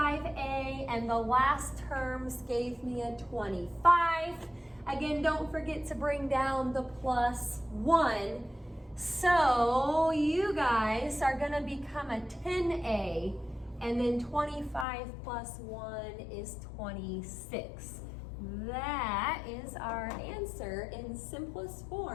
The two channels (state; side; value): drops out; right; at 14.9 s